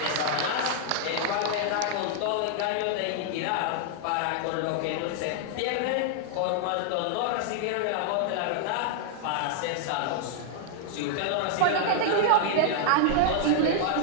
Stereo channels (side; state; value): both; different; correlation -0.01